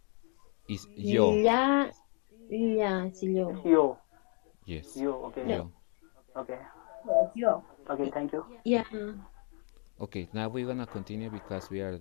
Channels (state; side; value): quieter; right; 39.9 dB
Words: Is yo, La, la, sí, It's yo. yo. yes, Yo, okay. No, yo. Okay. Yo. Okay, thank you. yeah. Okay, now we're gonna continue because we are